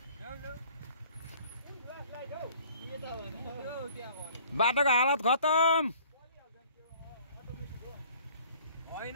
बाटोको हालत खतम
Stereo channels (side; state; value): both; inverted; correlation -0.54